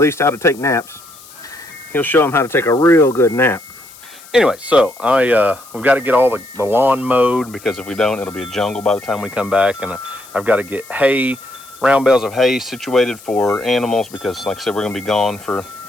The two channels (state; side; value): noise; left; hiss, 21 dB below the sound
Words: how to take naps. He'll show them how to take a real good nap. Anyway, so we've got to get all the lawn mowed, because if we don't, it'll be a jungle by the time we come back. And I've got to get hay, round bales of hay situated for animals, because like I said, we're going to be gone for